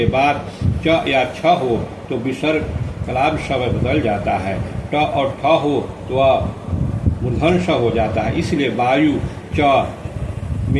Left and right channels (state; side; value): identical; both; correlation 1.00